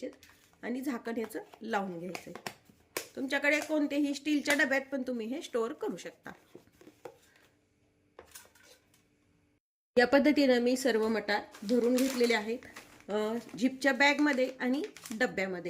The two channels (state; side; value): identical; both; correlation 1.00